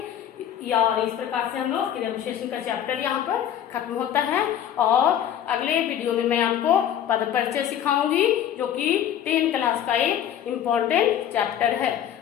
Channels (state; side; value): quieter; right; 10.2 dB